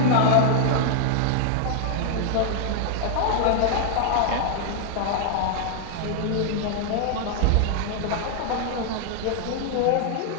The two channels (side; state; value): both; different; correlation -0.01